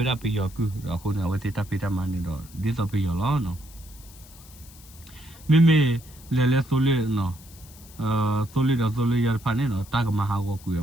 ရပီယောကူအခုနော်ဝဲစီတပိတမနေတော့ဒီဆိုပီယောလောနော်မေမေလေလေဆိုလေးနော်ဆိုလေးတော့ဆိုလေးရဖာနေနော်တာကမဟာကိုကူရ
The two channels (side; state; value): left; noise; hiss, 21 dB below the sound